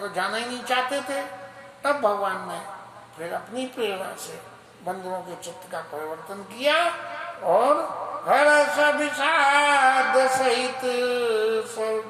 जाना ही नहीं चाहते थे। तब भगवान ने फिर अपनी प्रेरणा से बंदरों के चित्त का परिवर्तन किया और हर्ष विषाद सहित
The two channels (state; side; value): identical; both; correlation 1.00